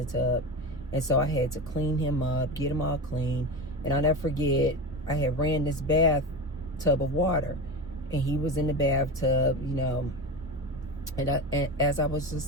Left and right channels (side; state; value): both; normal; correlation 0.25